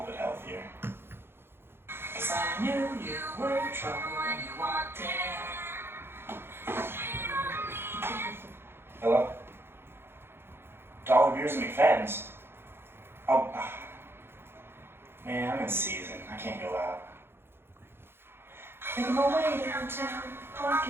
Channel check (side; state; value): left; late; 0.11 ms